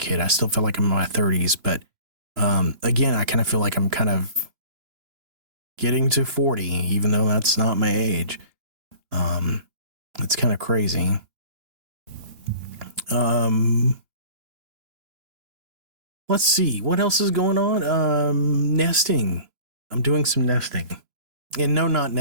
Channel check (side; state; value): left; late; 2.9 ms